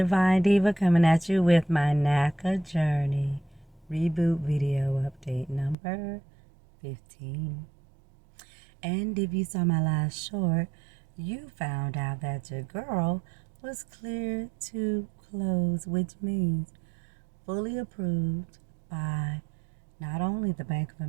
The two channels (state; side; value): drops out; left; at 5.8 s